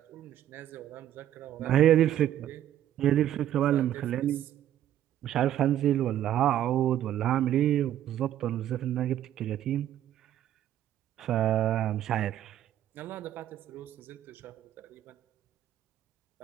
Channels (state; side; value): quieter; left; 11.7 dB